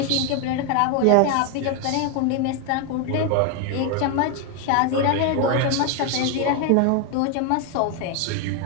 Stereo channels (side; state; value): both; different; correlation 0.01